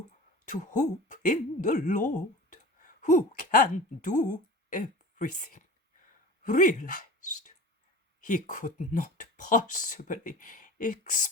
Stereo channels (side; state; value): both; normal; correlation 0.37